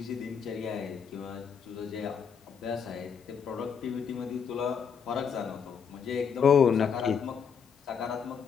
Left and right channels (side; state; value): right; quieter; 6.8 dB